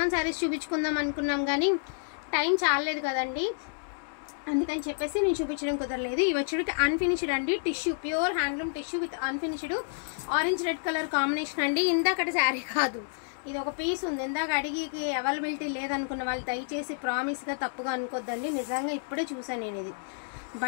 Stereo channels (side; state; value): right; silent; 58 dB below the other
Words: శారీస్ చూపించుకుందాం అనుకున్నాం కానీ టైం చాలలేదు కదండి, అందుకని చెప్పేసి నేను చూపించడం కుదరలేదు. ఇవి వచ్చేటికి అన్ఫినిష్డ్ అండి, tissue, pure handloom tissue with unfinished orange red colour combination అండి. ఇందాకటి శారీ కాదు, ఇది ఒక పీస్ ఉంది. ఇందాక అడిగికి అవైలబిలిటీ లేదనుకున్న వాళ్ళు దయచేసి ప్రామిస్గా తప్పుగా అనుకోద్దండి. నిజంగా ఇప్పుడే చూసాను నేను. ఇది